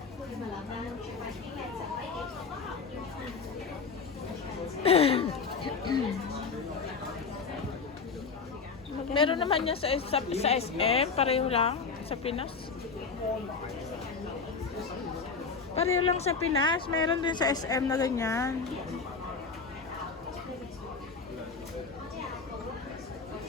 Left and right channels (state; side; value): quieter; right; 5.0 dB